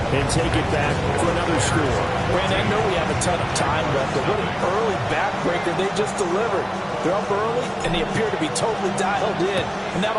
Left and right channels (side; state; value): both; identical; correlation 1.00